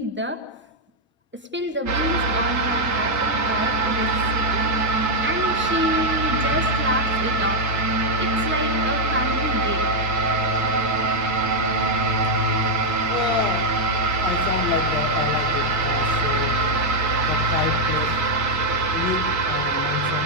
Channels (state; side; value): normal; both; correlation 0.00